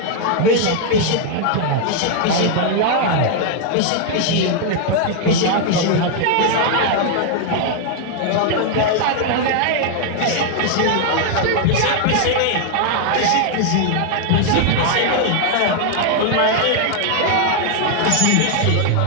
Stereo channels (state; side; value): different; both; correlation 0.00